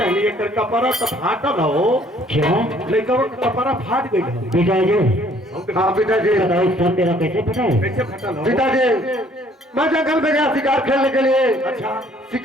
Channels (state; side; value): normal; both; correlation 0.60